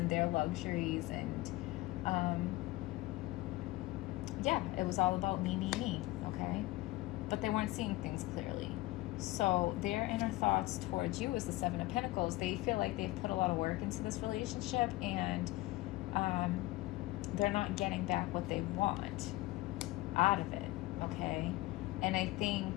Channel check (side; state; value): right; quieter; 19.3 dB